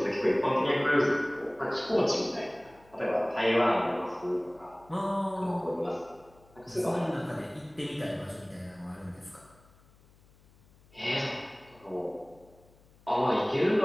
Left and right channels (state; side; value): noise; left; hum, 28 dB below the sound